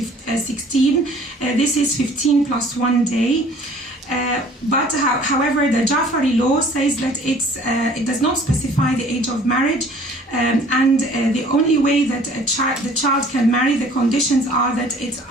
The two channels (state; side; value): normal; both; correlation 0.52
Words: This is 15 plus 1 day. But however, the Jafari law says that it does not specify the age of marriage, and the only way that the child can marry, the conditions are that it's